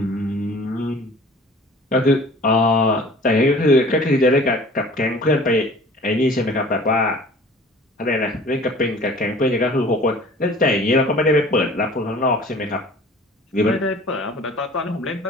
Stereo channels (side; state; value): both; normal; correlation 0.47